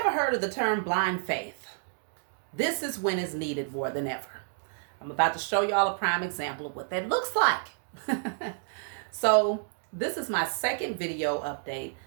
heard of the term blind faith, this is when it's needed more than ever. I'm about to show y'all a prime example of what that looks like. So, this is my second video update.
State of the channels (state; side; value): silent; left; digital silence